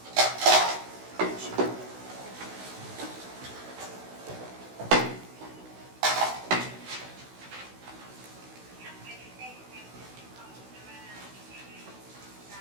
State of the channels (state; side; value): late; left; 16 ms